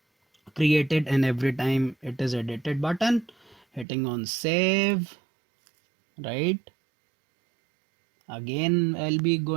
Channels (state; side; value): drops out; left; at 3.9 s